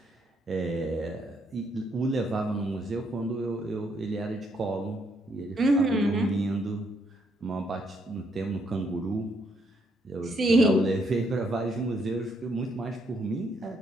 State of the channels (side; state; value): both; normal; correlation 0.73